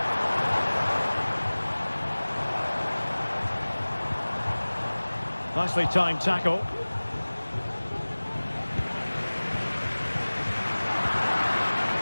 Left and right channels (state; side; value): inverted; both; correlation -1.00